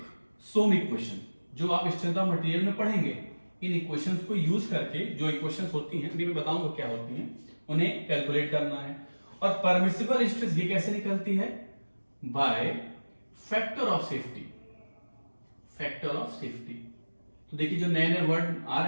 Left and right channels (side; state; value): both; inverted; correlation -1.00